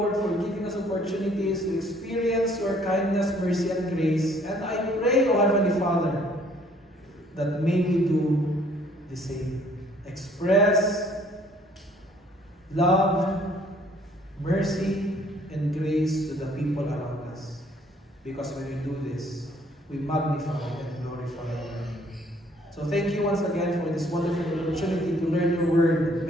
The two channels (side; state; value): both; normal; correlation 0.60